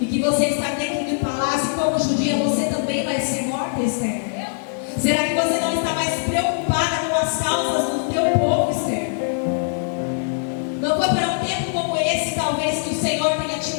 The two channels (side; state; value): right; silent; 64 dB below the other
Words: E que você está dentro do palácio, e como judia você também vai ser morta, Esther? Será que você não está mais preocupada com as causas do teu povo, Esther? Não foi para um tempo como esse, talvez, que o Senhor tenha te